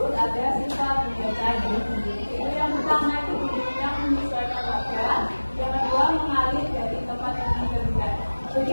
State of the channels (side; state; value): both; inverted; correlation -1.00